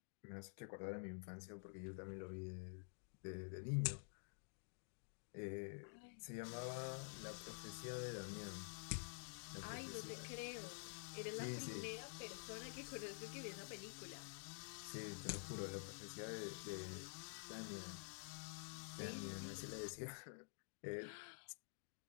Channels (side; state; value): right; silent; digital silence